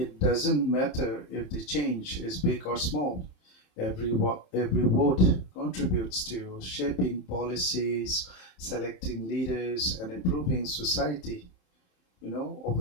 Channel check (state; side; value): late; right; 27 ms